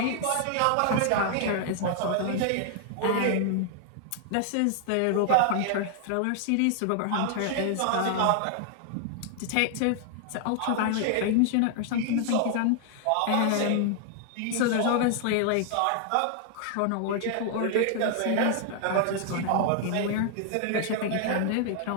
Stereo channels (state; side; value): different; both; correlation 0.00